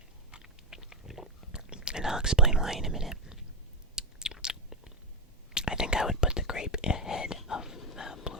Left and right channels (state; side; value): normal; both; correlation 0.07